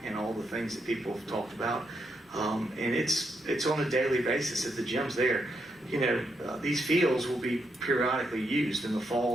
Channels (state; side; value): normal; both; correlation 0.80